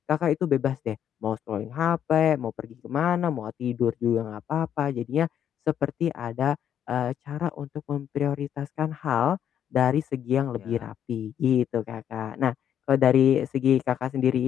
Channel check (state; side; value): quieter; right; 9.5 dB